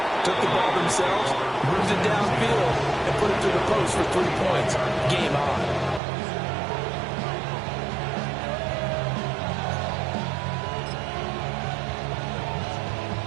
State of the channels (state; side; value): drops out; left; at 6.0 s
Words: Took the ball themselves, moved it downfield, and put it through the post for 3 points. Game on.